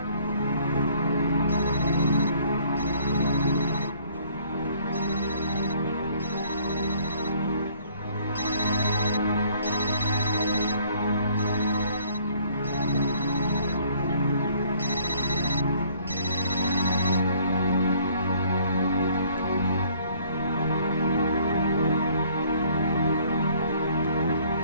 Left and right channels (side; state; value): both; inverted; correlation -0.60